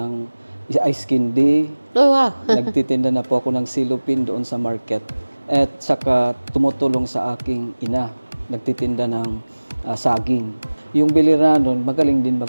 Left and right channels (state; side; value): inverted; both; correlation -1.00